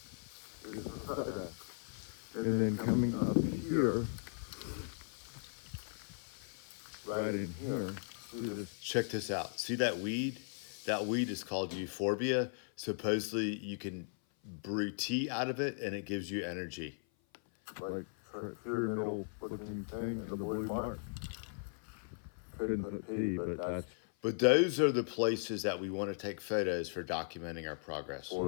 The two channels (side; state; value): right; silent; 53 dB below the other